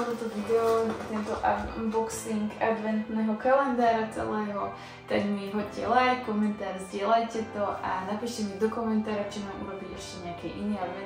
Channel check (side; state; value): both; identical; correlation 1.00